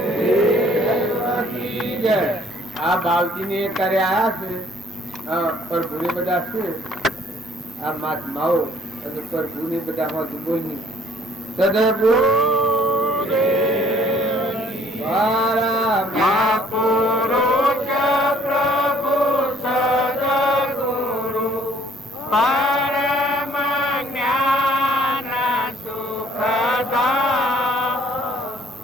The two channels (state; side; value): normal; both; correlation 0.60